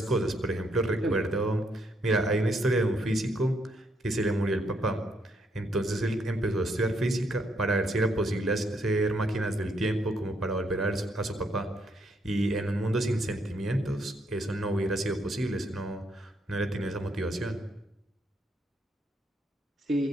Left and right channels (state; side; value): normal; both; correlation 0.74